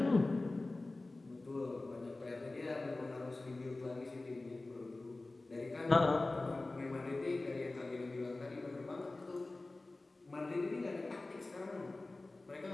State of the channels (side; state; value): right; quieter; 3.1 dB